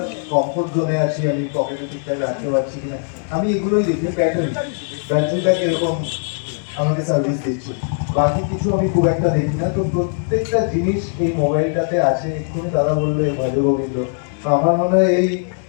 কমফোর্ট জোনে আছি, আমি পকেটে ঠিকঠাক রাখতে পারছি কিনা, আমি এগুলোই দেখি। ব্যাটারিটা কিরকম আমাকে সার্ভিস দিচ্ছে, বাকি কিছু আমি খুব একটা দেখি না। তো প্রত্যেকটা জিনিস এই মোবাইলটাতে আছে। এক্ষুনি দাদা বললো ভজ গোবিন্দ, তো আমার মনে হয় এই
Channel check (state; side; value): silent; right; 66 dB below the other